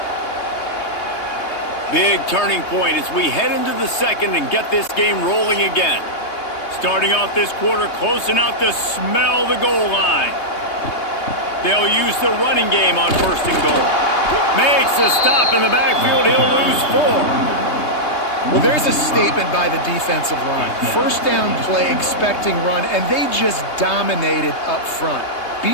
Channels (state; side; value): late; right; 3.2 ms